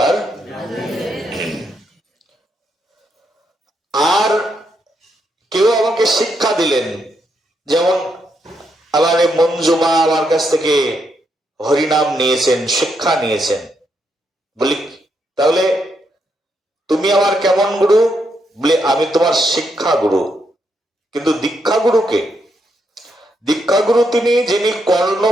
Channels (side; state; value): both; normal; correlation 0.79